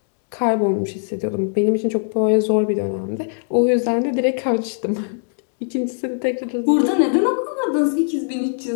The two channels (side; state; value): right; silent; digital silence